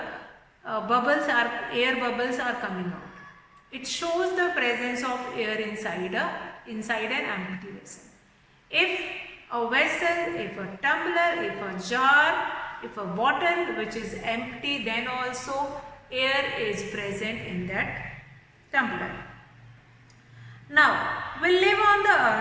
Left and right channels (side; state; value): both; identical; correlation 1.00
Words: air bubbles are coming out. It shows the presence of air inside an empty vessel. If a vessel, if a tumbler, if a jar, if a bottle which is empty, then also air is present in that tumbler. Now, we live on the